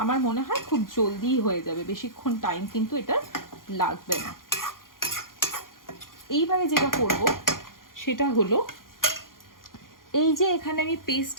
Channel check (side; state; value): right; late; 0.91 ms